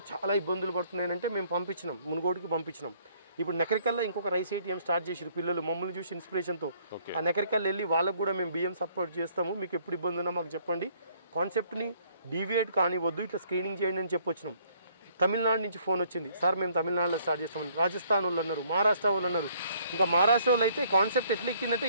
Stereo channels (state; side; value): inverted; both; correlation -0.63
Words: చాలా ఇబ్బందులు పడుతున్నాయంటే మేము పంపించినాం, మునుగోడుకి పంపించినాం. ఇప్పుడు నెకరికల్లో ఇంకొక రైస్ ఏటీఎం స్టార్ట్ చేసారు పిల్లలు మమ్మల్ని చూసి ఇన్స్పిరేషన్తో. ఆ నెకరికల్లో వెళ్ళి వాళ్ళకు కూడా మేము బియ్యం సపోర్ట్ చేస్తాము, మీకు ఎప్పుడు ఇబ్బంది ఉన్నా మాకు చెప్పండి, కాన్సెప్ట్ని డీవియేట్ కానివద్దు, ఇట్లా స్క్రీనింగ్ చేయండి అని చెప్పొచ్చినాం. తమిళనాడు నుంచి ఫోన్ వచ్చింది, సార్ మేము తమిళనాడులో స్టార్ట్ చేస్తామని. రాజస్థాన్ వాళ్ళు అన్నారు, మహారాష్ట్ర వాళ్ళు అన్నారు. ఇంకా మహారాష్ట్ర వాళ్ళు అయితే కాన్సెప్ట్ ఎట్లా ఎక్కిందంటే